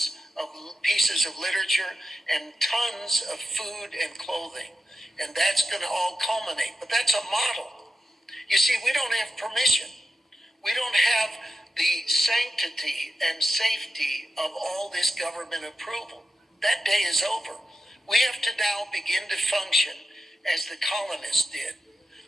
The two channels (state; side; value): normal; both; correlation 0.89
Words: of pieces of literature and tons of food and clothing. And that's going to all culminate. But that's a model. You see, we don't have permission. We don't have the sanctity and safety of all this government approval. That day is over. We have to now begin to function as the colonists did.